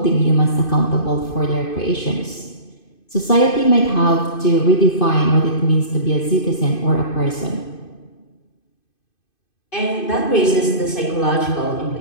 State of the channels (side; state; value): right; late; 2.5 ms